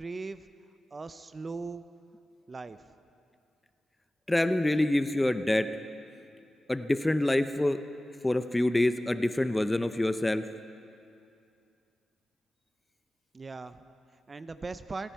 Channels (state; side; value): normal; both; correlation 0.98